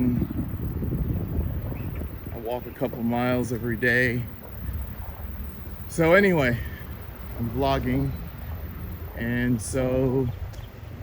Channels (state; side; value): identical; both; correlation 1.00